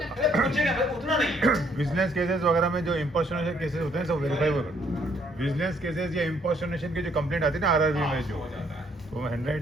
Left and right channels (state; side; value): normal; both; correlation 0.67